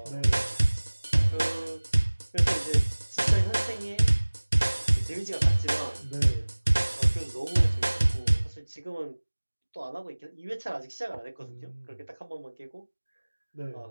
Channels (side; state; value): both; inverted; correlation -1.00